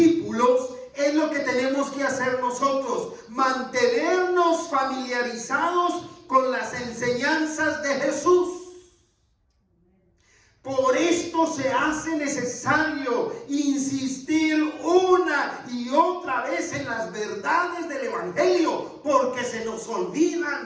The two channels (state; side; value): identical; both; correlation 1.00